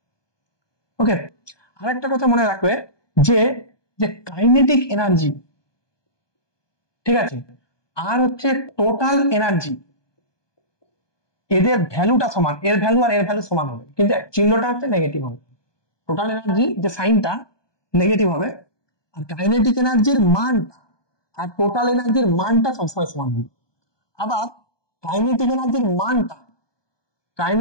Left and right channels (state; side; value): late; right; 1.2 ms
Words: ওকে, আরেকটা কথা মনে রাখবে যে যে কাইনেটিক এনার্জি, ঠিক আছে, আর হচ্ছে টোটাল এনার্জি, এদের ভ্যালুটা সমান, এর ভ্যালু আর এর ভ্যালু সমান হবে, কিন্তু চিহ্নটা হচ্ছে নেগেটিভ হবে। টোটাল এনার্জি যে সাইনটা নেগেটিভ হবে, আর কাইনেটিক এনার্জির মানটা আর টোটাল এনার্জির মানটা সবসময় সমান হবে। আবার কাইনেটিক এনার্জির